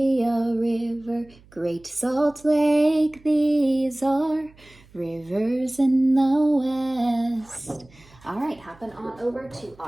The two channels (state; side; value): noise; right; hum, 27 dB below the sound